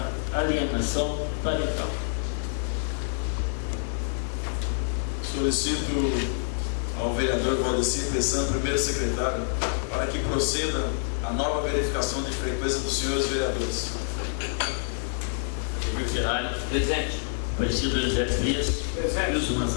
Alienação Parental. Solicito ao vereador Valdecir Pessan, primeiro secretário, para que proceda a nova verificação de frequência dos senhores vereadores. Emir Ferrari. Presente. Aparecido Elisete Frias. Presente. Wilson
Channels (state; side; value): silent; right; digital silence